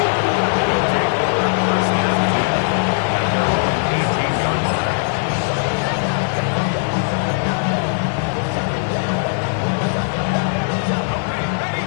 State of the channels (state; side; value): silent; right; digital silence